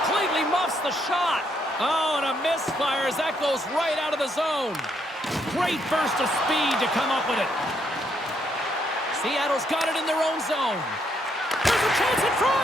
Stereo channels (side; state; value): both; normal; correlation 0.74